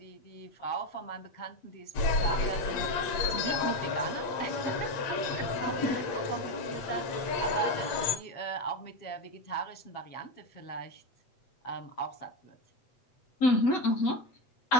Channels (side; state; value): right; late; 8.6 ms